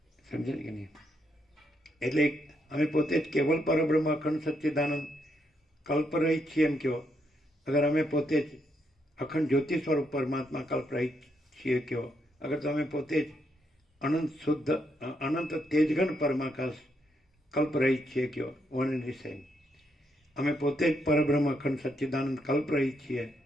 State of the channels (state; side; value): normal; both; correlation 0.77